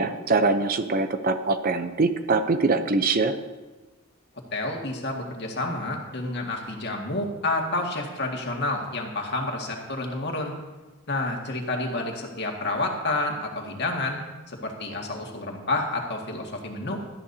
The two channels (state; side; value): normal; both; correlation 0.04